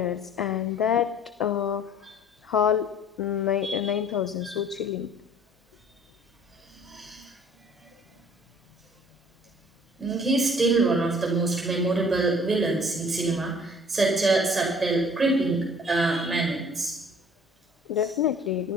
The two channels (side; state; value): both; normal; correlation 0.52